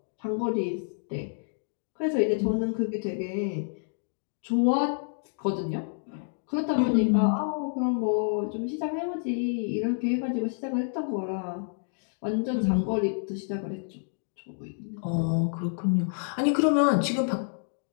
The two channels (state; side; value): silent; right; digital silence